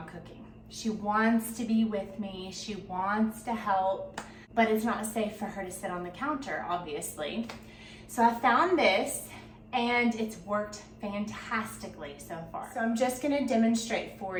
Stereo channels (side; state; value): both; identical; correlation 1.00